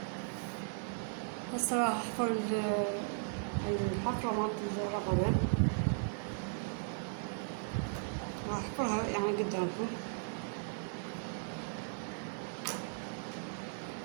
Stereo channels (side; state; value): left; silent; digital silence